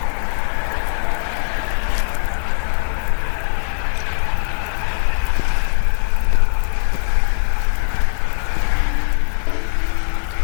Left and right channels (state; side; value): silent; right; digital silence